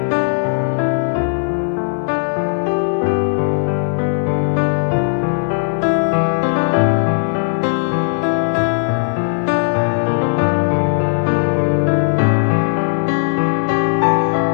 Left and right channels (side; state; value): right; silent; 57 dB below the other